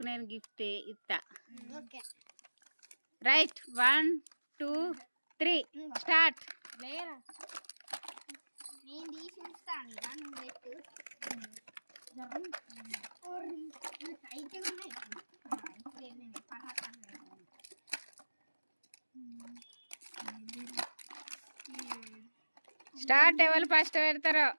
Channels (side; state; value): both; inverted; correlation -1.00